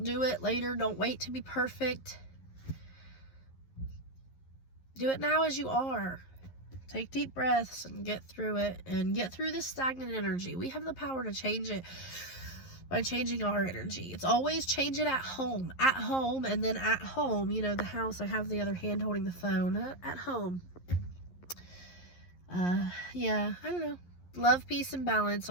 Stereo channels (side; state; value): right; late; 11 ms